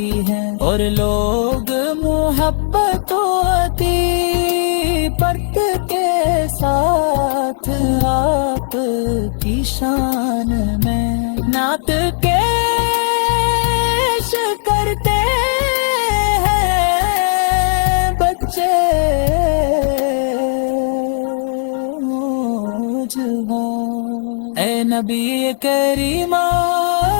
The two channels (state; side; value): silent; right; digital silence